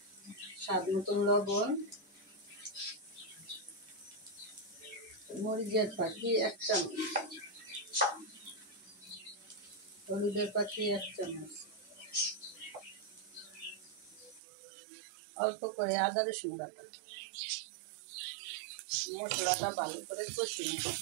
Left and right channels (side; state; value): left; drops out; at 14.4 s